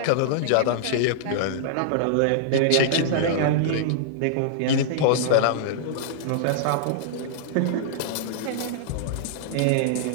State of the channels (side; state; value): both; different; correlation -0.01